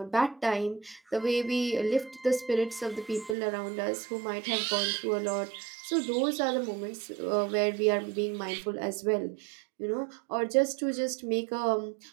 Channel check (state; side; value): drops out; left; at 3.4 s